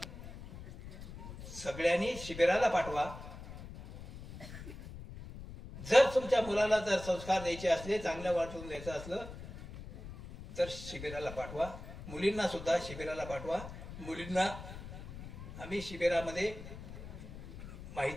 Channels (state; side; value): noise; left; rumble, 12 dB below the sound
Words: सगळ्यांनी शिबिराला पाठवा. जर तुमच्या मुलाला जर संस्कार द्यायचे असले, चांगल्या वाटून द्यायचं असलं तर शिबिराला पाठवा. मुलींना सुद्धा शिबिराला पाठवा. मुलींना आम्ही शिबिरामध्ये